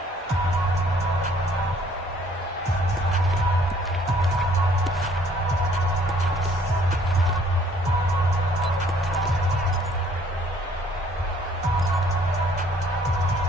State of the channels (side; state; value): both; normal; correlation 0.60